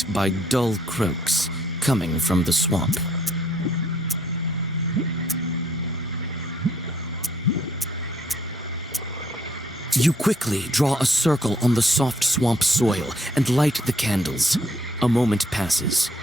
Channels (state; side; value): normal; both; correlation 0.67